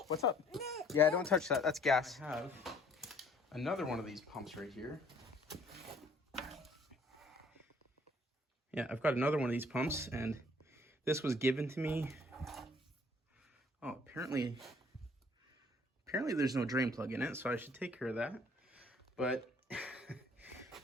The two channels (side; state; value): both; normal; correlation 0.59